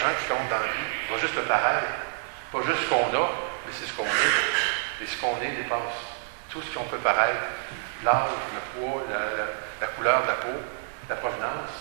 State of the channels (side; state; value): left; silent; digital silence